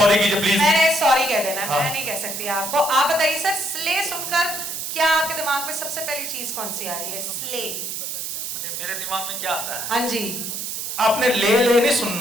कीजिए प्लीज। मैंने सॉरी कह देना। हाँ। मैं नहीं कह सकती आपको। आप बताइए सर, स्ले सुनकर क्या आपके दिमाग में सबसे पहली चीज कौन सी आ रही है? स्ले मेरे दिमाग में क्या आता है? हाँ जी। आपने ले नहीं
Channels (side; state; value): right; noise; hiss, 5 dB below the sound